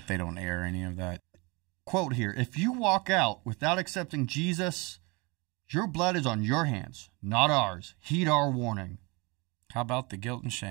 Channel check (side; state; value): left; quieter; 27.3 dB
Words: they don't air any of that. Quote here, if you walk out without accepting Jesus, your blood is on your hands, not ours. Heed our warning. How about the guilt and